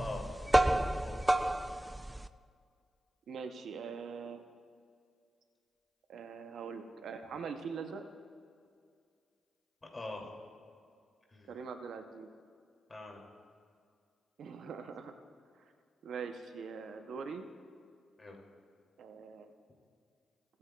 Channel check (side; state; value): both; normal; correlation 0.95